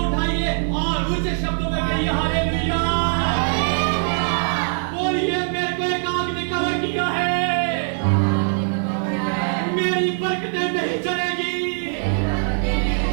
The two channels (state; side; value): silent; left; 64 dB below the other